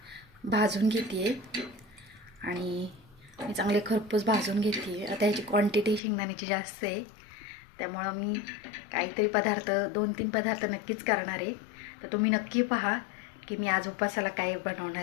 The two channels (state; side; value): drops out; right; at 6.0 s